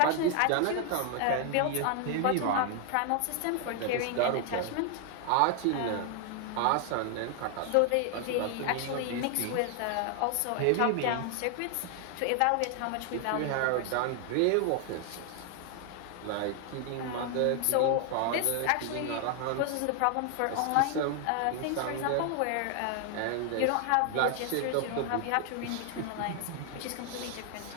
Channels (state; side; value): different; both; correlation 0.00